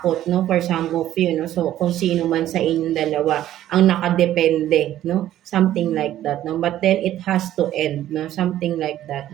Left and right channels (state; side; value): quieter; left; 12.7 dB